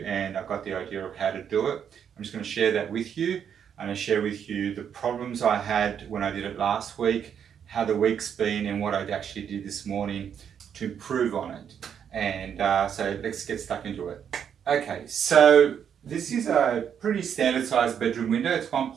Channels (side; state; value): left; quieter; 8.2 dB